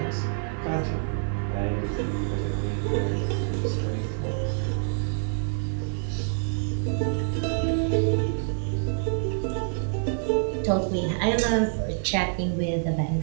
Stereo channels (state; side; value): silent; left; 60 dB below the other